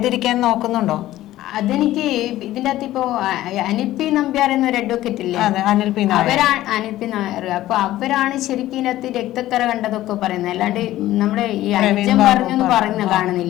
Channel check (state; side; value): quieter; right; 14.8 dB